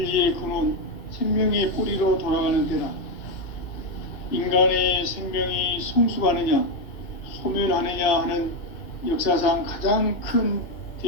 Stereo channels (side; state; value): right; late; 2.4 ms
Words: 근원, 생명의 뿌리로 돌아가는 때다. 인간의 생명이 성숙하느냐, 소멸하느냐 하는 역사상 가장 큰